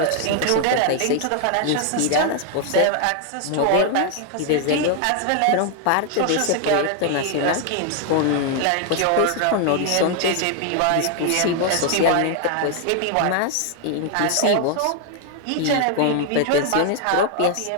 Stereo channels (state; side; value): different; both; correlation 0.00